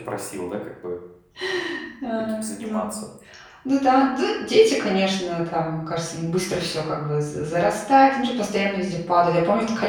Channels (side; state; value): both; identical; correlation 1.00